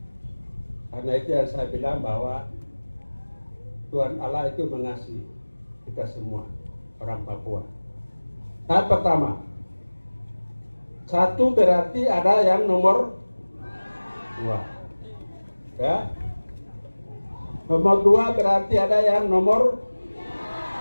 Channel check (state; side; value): inverted; both; correlation -1.00